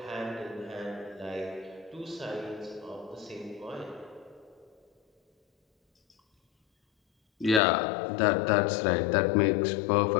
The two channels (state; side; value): drops out; right; at 7.6 s